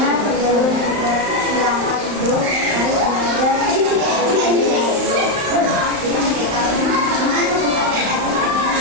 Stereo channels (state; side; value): late; left; 35 ms